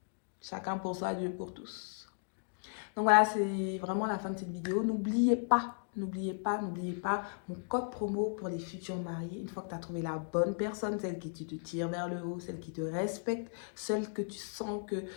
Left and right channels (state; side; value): silent; right; digital silence